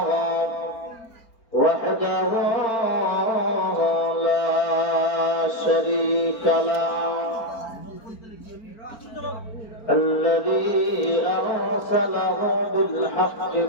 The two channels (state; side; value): late; right; 4.4 ms